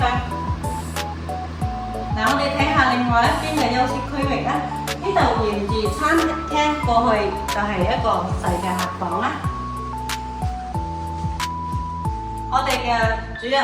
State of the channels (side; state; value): both; identical; correlation 1.00